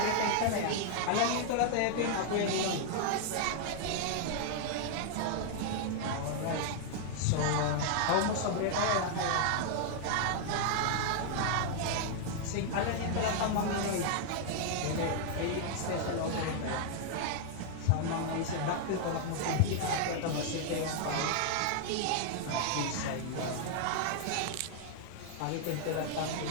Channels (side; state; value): both; different; correlation 0.00